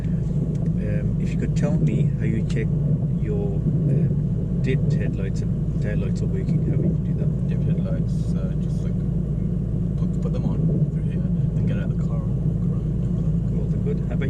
if you could tell me how you check your dipped headlights and tail lights are working, how would you do that? Dipped headlights, just like put them on through here, then get out of the car and walk around and have a look. Well, they're good. How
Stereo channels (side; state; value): both; identical; correlation 1.00